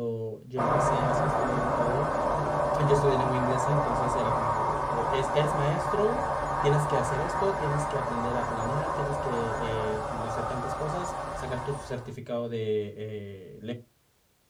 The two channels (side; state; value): both; identical; correlation 1.00